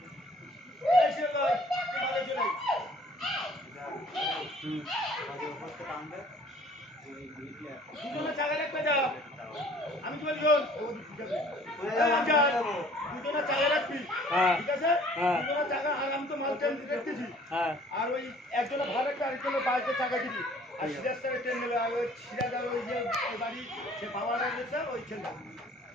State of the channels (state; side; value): normal; both; correlation 0.54